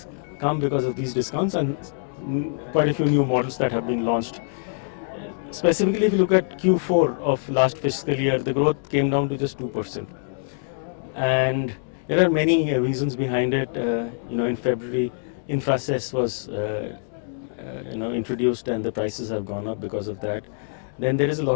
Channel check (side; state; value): right; silent; digital silence